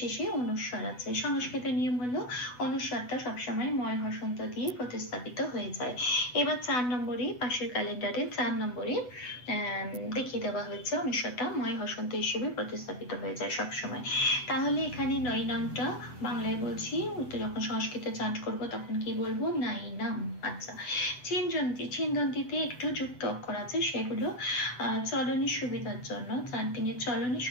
অনুস্বার আছে। সংস্কৃতের নিয়ম হলো অনুস্বারটা সবসময় ময় হসন্ত দিয়ে প্রতিস্থাপিত হয়ে যায়। এবার 4 নম্বরে পাশের ক্যালেন্ডারে 4 নম্বরে দেখিয়ে দেওয়া হয়েছে অনুস্বারটা ময় হসন্ত হিসেবে প্রতিস্থাপিত হয়ে যায় সবসময়। তাহলে এখানে নৈনামটা বাংলায় বলছি, যখন সংস্কৃতে চান্ট করব তখন কি বলবো? নাইনাম। আচ্ছা, ছিন্দন্তিতে একটু যুক্ত অক্ষর আছে, সেগুলো চলনের সুবিধার জন্য, চান্টিং এর চলনের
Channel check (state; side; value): late; right; 8.0 ms